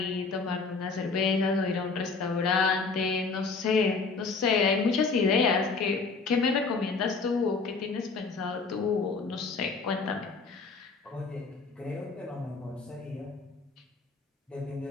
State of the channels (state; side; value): quieter; right; 4.4 dB